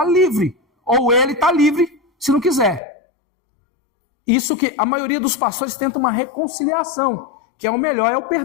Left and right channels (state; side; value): drops out; right; at 2.8 s